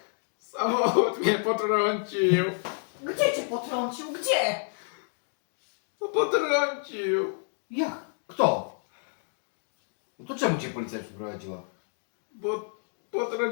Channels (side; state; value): right; silent; 57 dB below the other